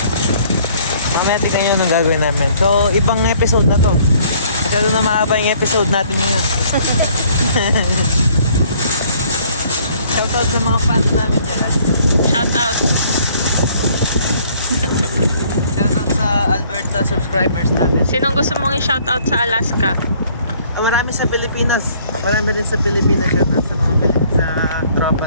Mamaya tignan nyo anong gagawin namin. So, ibang episode na to. Masyado na mahaba yung episode natin ngayon. Shoutout sa mga fans namin dyan. Shout out! Shoutout sa Alberta subscribers natin. Sinong gusto mong i-shout out sa Alaska? Marami sa Pilipinas. Marami rin sa Pilipinas. Shoutout sa mga sa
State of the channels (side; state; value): both; inverted; correlation -0.59